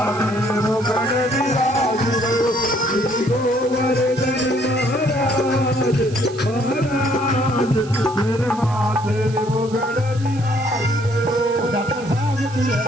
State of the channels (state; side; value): noise; right; hiss, 20 dB below the sound